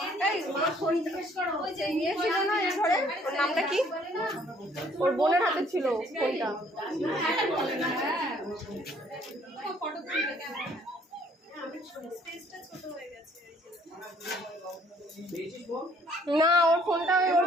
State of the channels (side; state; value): both; normal; correlation 0.61